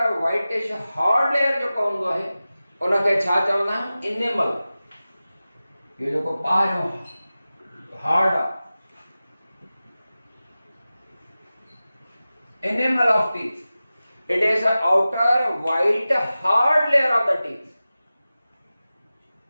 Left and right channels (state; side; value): inverted; both; correlation -0.96